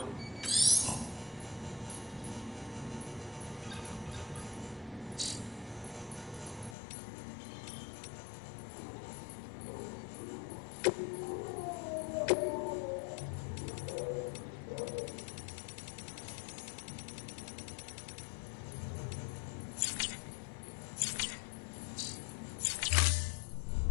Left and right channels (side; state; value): right; drops out; at 6.8 s